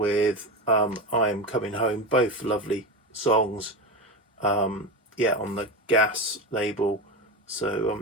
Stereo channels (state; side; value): normal; both; correlation 0.21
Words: I Am Coming Home, both lovely songs, on the Gas label. So